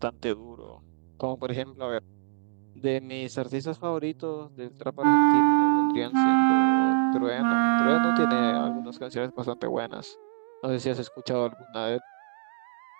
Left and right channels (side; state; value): left; silent; digital silence